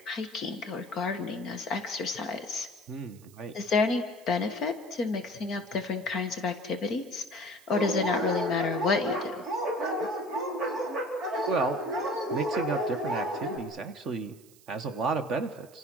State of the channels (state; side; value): noise; right; hiss, 25 dB below the sound